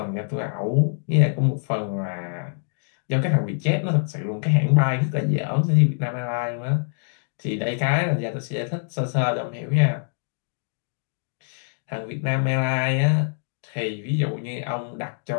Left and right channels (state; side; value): silent; right; digital silence